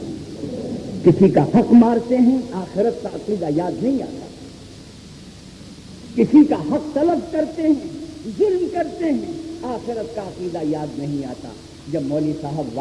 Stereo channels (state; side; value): identical; both; correlation 1.00